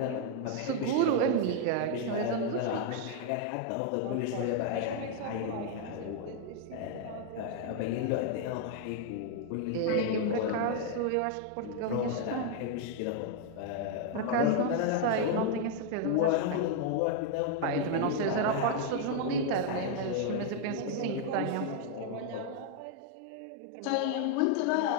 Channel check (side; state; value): both; different; correlation 0.00